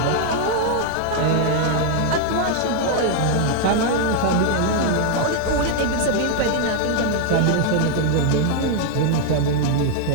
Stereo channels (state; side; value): different; both; correlation 0.00